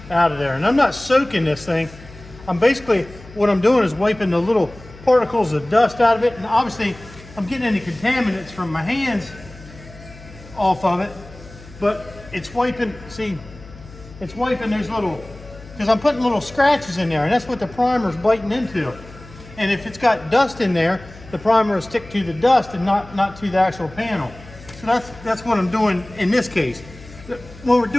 out of there. And I'm not soaking this thing. I'm basically, what I'm doing is wiping the little particles of dust out of it, and obviously I'm getting any contaminants from my hands off of it, but it's wiping, see, it's wiping those little, because I'm putting little scratches in there, and that's what the primer's biting into. And if it's got dust in there, the primer will stick to the dust and not to the actual panel. So that's what I'm doing in this case. When we're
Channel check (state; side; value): noise; left; hum, 19 dB below the sound